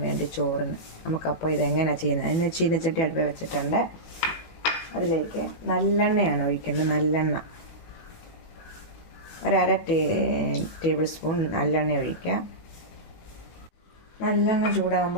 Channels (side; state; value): right; late; 18 ms